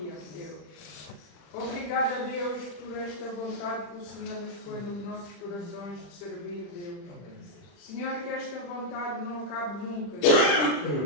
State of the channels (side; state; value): right; late; 40 ms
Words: Deus. Obrigada, Deus, por esta vontade que o Senhor nos põe nos nossos corações de servir, Deus. Senhor, que esta vontade não acabe nunca,